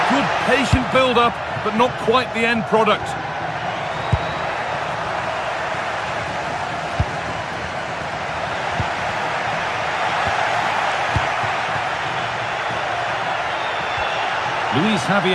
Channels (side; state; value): both; identical; correlation 1.00